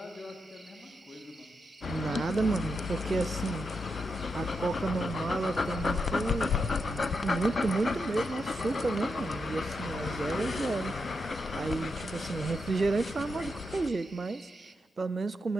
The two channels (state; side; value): normal; both; correlation 0.84